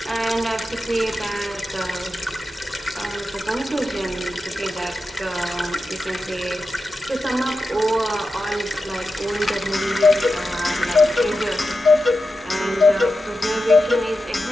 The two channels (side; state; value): both; normal; correlation 0.91